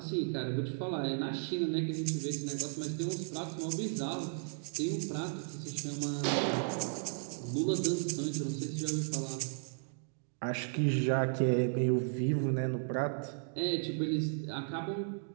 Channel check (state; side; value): silent; left; digital silence